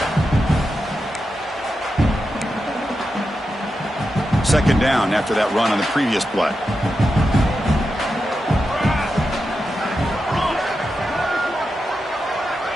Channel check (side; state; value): both; normal; correlation 0.88